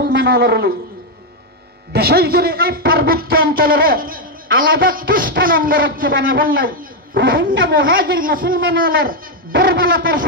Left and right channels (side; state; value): both; normal; correlation 0.02